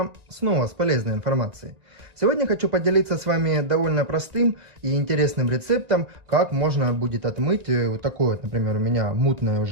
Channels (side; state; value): left; late; 1.9 ms